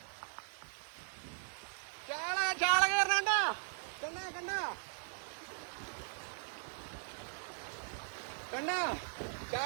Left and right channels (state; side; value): silent; left; digital silence